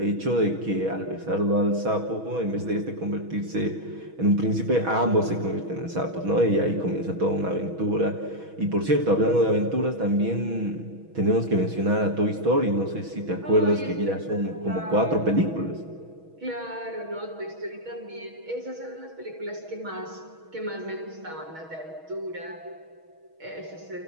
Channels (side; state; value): left; late; 6.2 ms